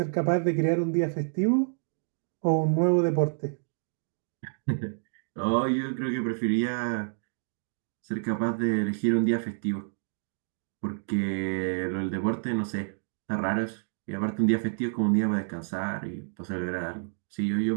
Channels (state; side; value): silent; left; digital silence